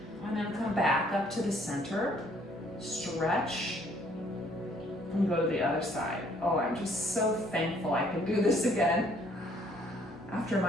And then come back up to the center, stretch, and go to the other side. Oh, I'm just so thankful I can do this again. After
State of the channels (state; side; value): normal; both; correlation 0.63